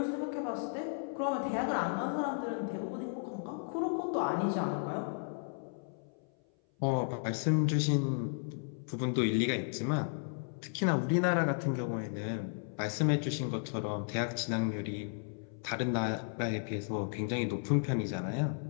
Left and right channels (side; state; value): right; silent; 55 dB below the other